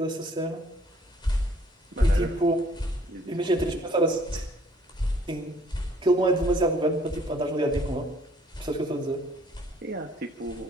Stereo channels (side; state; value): both; normal; correlation 0.61